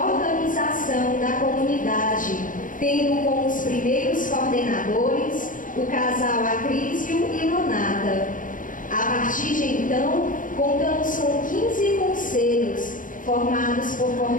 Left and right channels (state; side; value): late; right; 0.39 ms